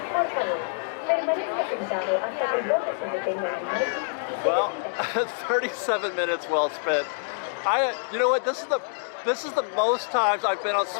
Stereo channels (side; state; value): right; silent; 61 dB below the other